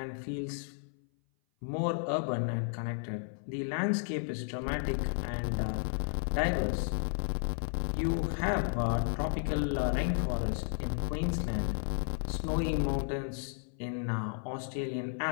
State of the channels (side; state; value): right; silent; 56 dB below the other